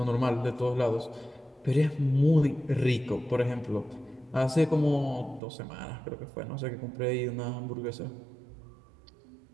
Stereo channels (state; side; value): drops out; left; at 5.4 s